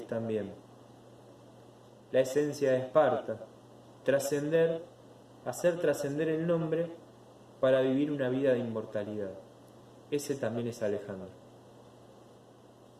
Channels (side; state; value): both; identical; correlation 1.00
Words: también, la esencia de Esparta, trascender, hacer trascender el nombre para vivir una vida de inmortalidad. Ese también es Alejandro.